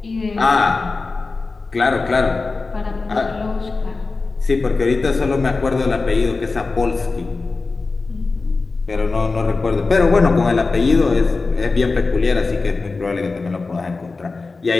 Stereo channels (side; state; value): right; quieter; 3.9 dB